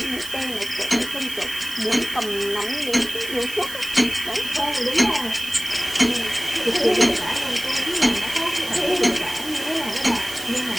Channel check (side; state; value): right; noise; hiss, 13 dB below the sound